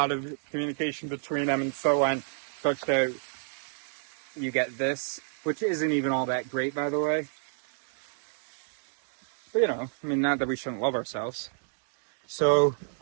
of communication between them and so on, such that you get this, which isn't even all that great, by the way. But not that we shouldn't love ourselves. So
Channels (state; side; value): silent; left; digital silence